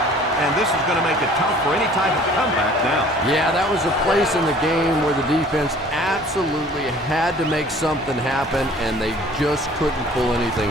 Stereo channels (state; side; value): normal; both; correlation 0.51